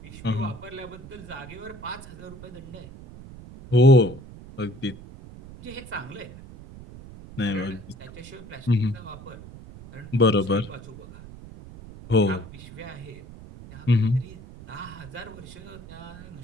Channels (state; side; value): noise; right; rumble, 16 dB below the sound